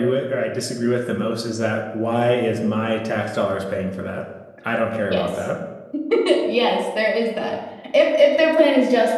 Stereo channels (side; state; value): both; identical; correlation 1.00